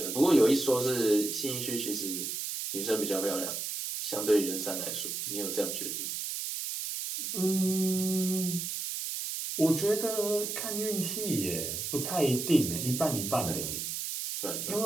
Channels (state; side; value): noise; right; hiss, 4 dB below the sound